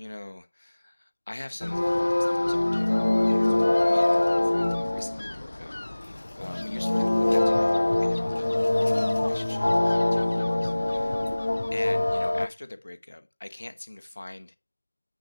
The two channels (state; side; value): inverted; both; correlation -1.00